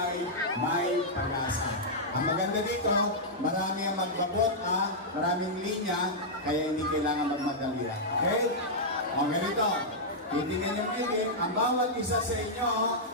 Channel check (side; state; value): both; normal; correlation -0.08